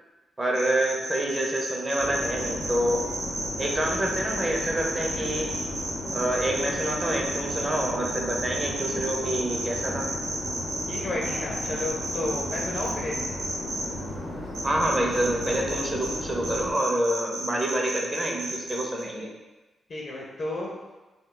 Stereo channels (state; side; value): normal; both; correlation 0.85